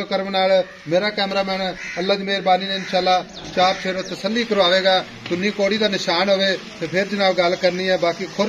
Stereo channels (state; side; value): identical; both; correlation 1.00